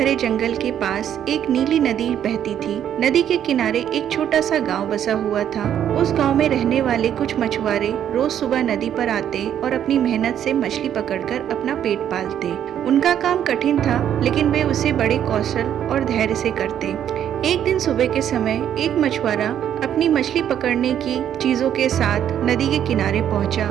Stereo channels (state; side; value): quieter; left; 9.9 dB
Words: जंगल के पास एक नीली नदी बहती थी। नदी के किनारे एक छोटा सा गांव बसा हुआ था। उस गांव में रहने वाले कुछ मछुआरे रोज सुबह नदी पर आते और अपनी मेहनत से मछली पकड़कर अपना पेट पालते। उनका काम कठिन था, लेकिन वे उसे बड़े कौशल और धैर्य से करते। एक दिन सुबह के समय एक मछुआरा अपनी मछली पकड़ने की चीजों के साथ नदी के किनारे पहुंचा।